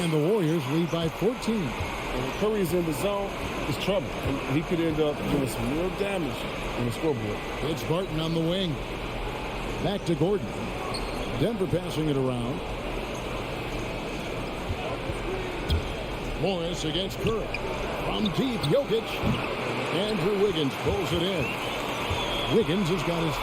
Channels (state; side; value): identical; both; correlation 1.00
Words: the Warriors lead by 14. And when Curry's in the zone, it's trouble. And he could end up doing some real damage on the scoreboard. It's Barton on the wing. Back to Gordon. Denver passing it around. Morris against Curry. From deep, Jokic. Andrew Wiggins pulls it in. Wiggins has got his